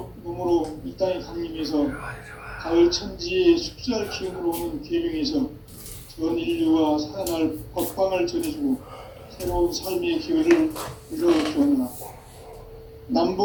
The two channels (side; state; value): both; identical; correlation 1.00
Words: 몸으로 이 땅에 강림해서 가을 천지에 숲살 기운으로 오는 계명에서 전 인류가 살아날 법방을 전해주고 새로운 삶의 기회를 이뤄주었노라.